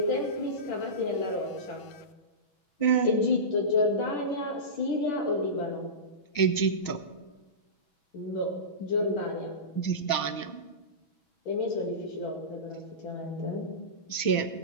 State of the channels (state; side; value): late; right; 6.2 ms